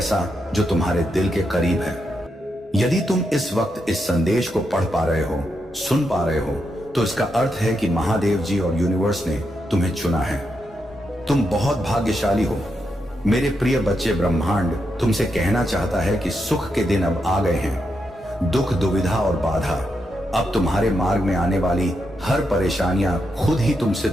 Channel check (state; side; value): normal; both; correlation 0.83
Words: जो तुम्हारे दिल के करीब है। यदि तुम इस वक्त इस संदेश को पढ़ पा रहे हो, सुन पा रहे हो, तो इसका अर्थ है कि महादेव जी और यूनिवर्स ने तुम्हें चुना है। तुम बहुत भाग्यशाली हो। मेरे प्रिय बच्चे, ब्रह्मांड तुमसे कहना चाहता है कि सुख के दिन अब आ गए हैं। दुख, दुविधा और बाधा, अब तुम्हारे मार्ग में आने वाली हर परेशानियां खुद ही तुमसे